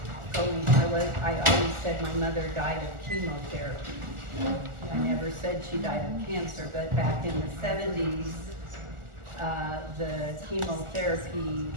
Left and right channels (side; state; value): left; late; 1.4 ms